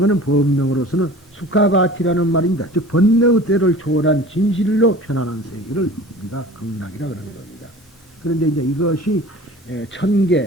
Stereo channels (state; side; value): normal; both; correlation 0.41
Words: 법명으로서는 수카바티라는 말입니다. 즉 번뇌의 때를 초월한 진실로 편안한 세계를 우리가 극락이라 그러는 겁니다. 그런데 이제 이것이